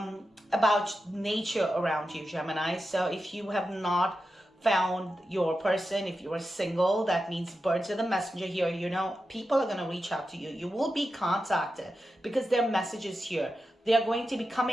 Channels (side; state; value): both; normal; correlation 0.90